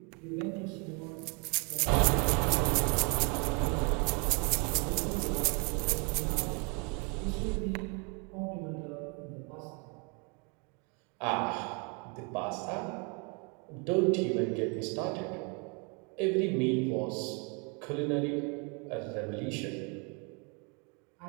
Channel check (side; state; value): left; quieter; 34.1 dB